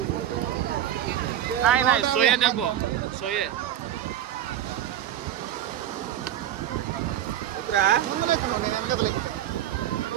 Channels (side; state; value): left; quieter; 11.3 dB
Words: नहीं नहीं सोये देखो सोये.